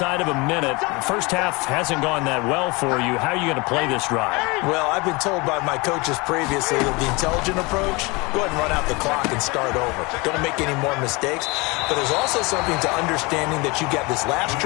of a minute. First half hasn't gone that well for you. How are you going to play this drive? Well, I've been told by my coaches previously that the intelligent approach, go ahead and run out the clock and start over. Don't make any more mistakes. But there's also something to understanding that you got this last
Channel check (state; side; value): quieter; right; 26.0 dB